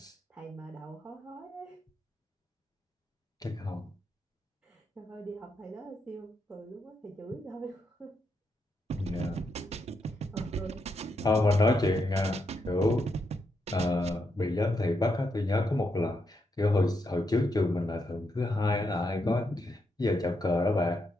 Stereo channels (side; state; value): both; normal; correlation 0.81